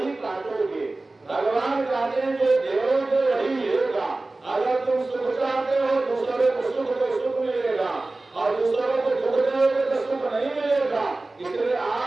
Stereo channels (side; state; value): left; quieter; 3.1 dB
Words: काटोगे। भगवान कहते हैं जो देवोगे वही मिलेगा। अगर तुम सुख चाहते हो दूसरों को सुख तो सुख मिलेगा और दूसरों को दुख दोगे तो सुख नहीं मिलेगा। इसलिए